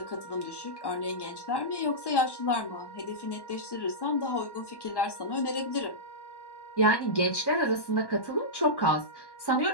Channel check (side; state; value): right; late; 1.1 ms